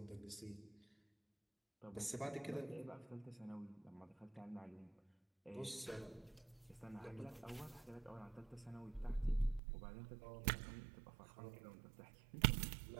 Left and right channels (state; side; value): drops out; left; at 9.6 s